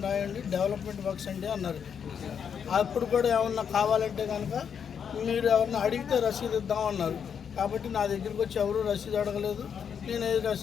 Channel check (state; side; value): quieter; right; 7.4 dB